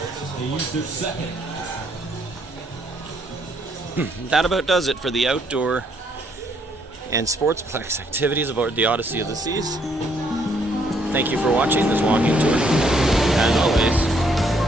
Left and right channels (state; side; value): normal; both; correlation 0.69